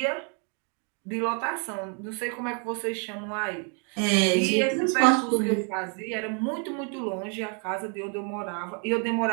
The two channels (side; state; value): left; quieter; 38.9 dB